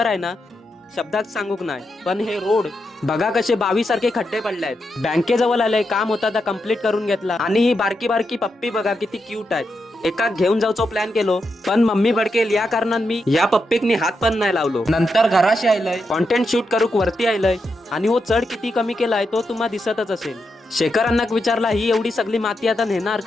आहे ना, शब्दात सांगूक नाही। पण हे रोड बघा कसे 22 सारखे खड्डे पडले आहेत। बँकेजवळ आलंय, काम होता तर कम्प्लीट करून घेतला। आणि ही बारकी बारकी पप्पी बघा किती क्यूट आहे। एका घेऊन जाऊचो प्लॅन केलो, पण मम्मी भडकेल या कारणान मी या पप्पीकनी हात पण नाही लावलो। नंतर घराशी आयलंय, कॉन्टेंट शूट करूक वरती आयलंय आणि वो चढ किती कमी केलाय तो तुम्हाला दिसतच असेल। शेखरांना विचारला ही एवढी सगळी माती आता नेणार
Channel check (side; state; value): both; normal; correlation 0.85